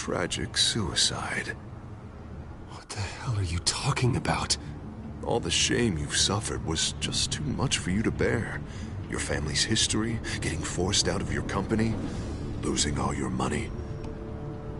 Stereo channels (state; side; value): identical; both; correlation 1.00